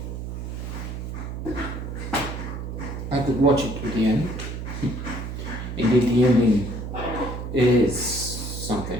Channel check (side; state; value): right; noise; hum, 6 dB below the sound